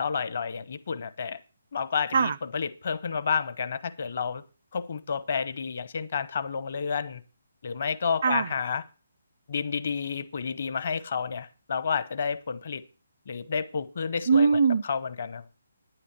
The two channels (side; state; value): both; inverted; correlation -0.76